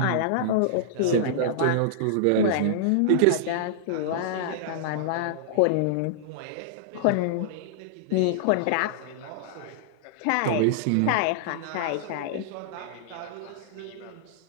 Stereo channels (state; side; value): different; both; correlation -0.02